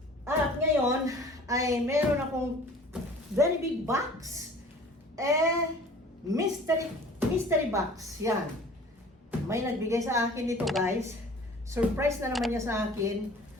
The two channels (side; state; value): both; normal; correlation 0.47